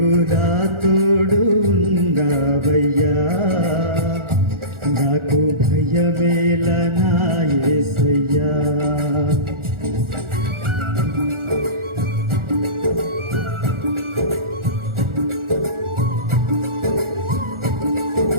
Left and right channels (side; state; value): left; late; 1.4 ms